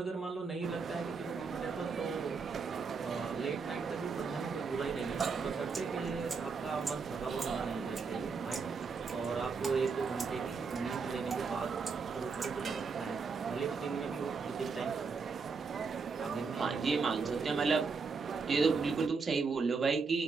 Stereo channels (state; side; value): quieter; left; 4.9 dB